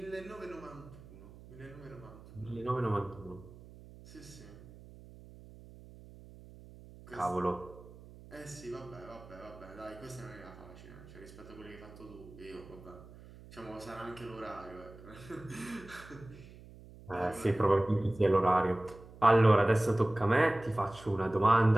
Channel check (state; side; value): noise; right; hum, 19 dB below the sound